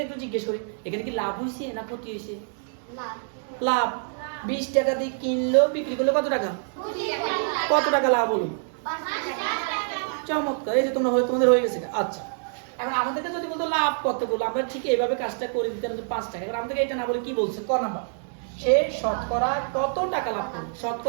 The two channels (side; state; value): left; silent; digital silence